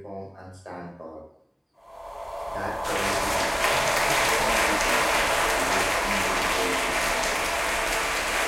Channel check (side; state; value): both; identical; correlation 1.00